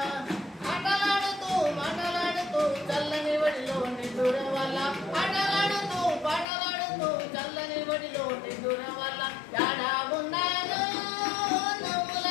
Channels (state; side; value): drops out; right; at 6.5 s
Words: ఆటలాడుతూ మాటలాడుతూ చల్లని వడిలో నిద్దుర వల్ల ఆటలాడుతూ పాటలాడుతూ చల్లని వడిలో నిద్దుర వల్ల యాడా ఉన్నాదో నవ్వుల